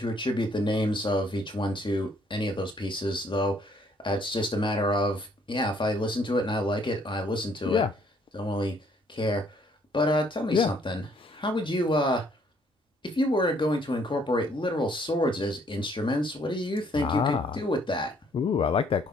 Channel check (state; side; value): normal; both; correlation 0.65